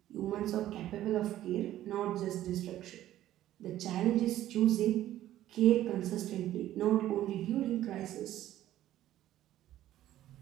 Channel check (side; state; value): left; quieter; 13.3 dB